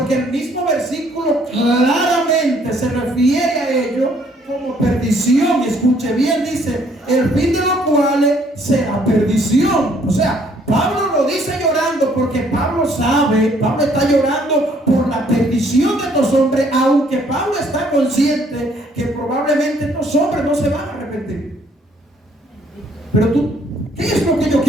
el mismo versículo claramente se refiere a ello como perdición. Escuche bien, dice: el fin de los cuales será perdición. O sea, Pablo lo dice llorando porque Pablo sabe, Pablo está llorando por la perdición de estos hombres, aunque Pablo está consciente que probablemente estos hombres no se van a arrepentir. Pero ¿qué es lo que yo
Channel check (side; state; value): both; normal; correlation 0.64